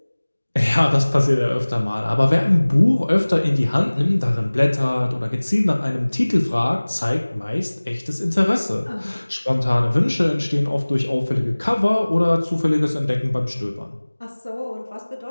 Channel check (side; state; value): both; inverted; correlation -1.00